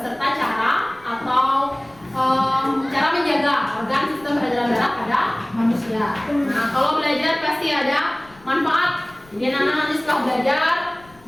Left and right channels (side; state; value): left; noise; rumble, 27 dB below the sound